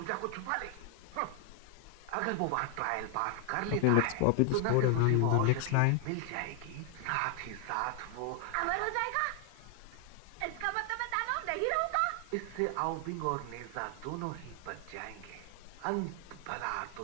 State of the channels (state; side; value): different; both; correlation 0.00